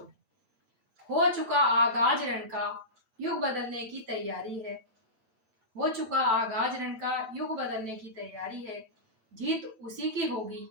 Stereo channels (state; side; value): late; left; 8.1 ms